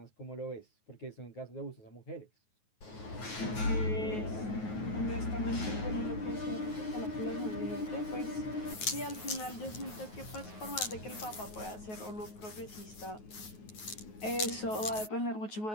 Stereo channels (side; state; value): right; late; 9.4 ms